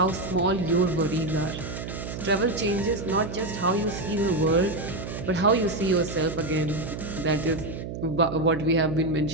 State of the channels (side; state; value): right; noise; hum, 7 dB below the sound